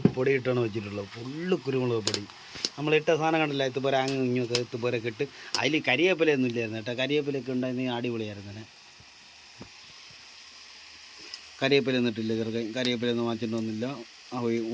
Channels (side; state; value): both; identical; correlation 1.00